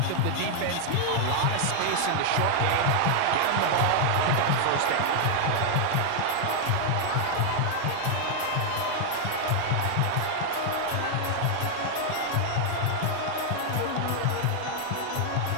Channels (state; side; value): different; both; correlation 0.00